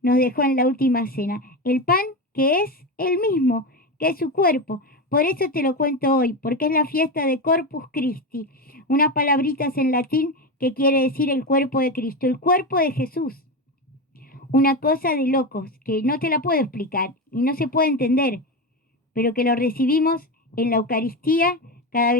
nos dejó en la última cena, el pan que es el mismo, que es su cuerpo. Por eso te lo cuento hoy, porque es la fiesta de Corpus Christi, unas palabritas en latín que quiere decir el cuerpo de Cristo, el cuerpo de Jesús. Una cosa de locos que no te la puedo explicar y no se puede entender, pero que lo recibimos en la Eucaristía cada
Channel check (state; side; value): normal; both; correlation 0.18